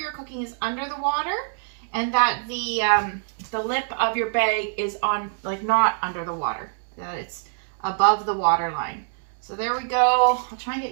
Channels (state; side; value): silent; left; digital silence